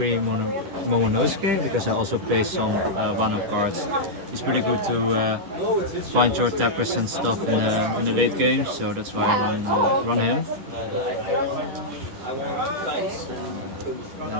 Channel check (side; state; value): left; late; 10 ms